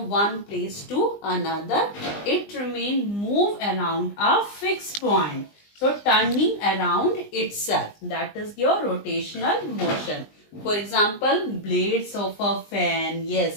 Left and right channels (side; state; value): right; late; 20 ms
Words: one place to another. It remains move around a fixed point. So turning around itself. That is your rotational motion. For example, blades of a fan.